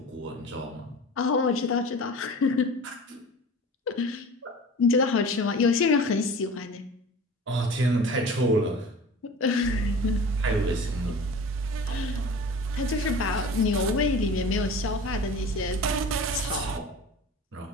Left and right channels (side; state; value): both; normal; correlation 0.38